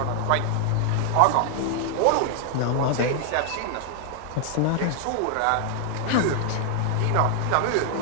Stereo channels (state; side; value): different; both; correlation 0.00